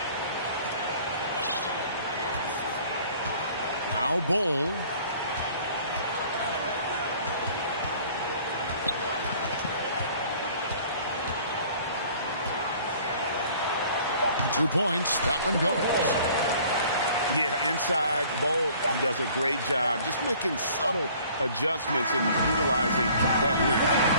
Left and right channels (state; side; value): inverted; both; correlation -0.53